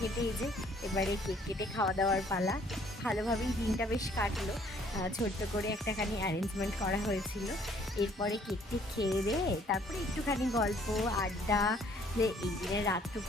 এই যে এবারে কেক কেটে খাওয়া দাওয়ার পালা। ভালোভাবেই দিনটা বেশ কাটলো। ছোট্ট করে একটাখানি অ্যারেঞ্জমেন্ট করা হয়েছিল। এরপরে কেকটি খেয়ে দিয়ে তারপরে একটুখানি গল্প আড্ডা, যে এই দিনের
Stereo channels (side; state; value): both; normal; correlation 0.61